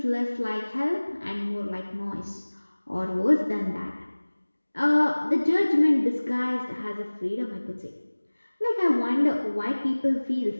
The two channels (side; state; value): both; inverted; correlation -1.00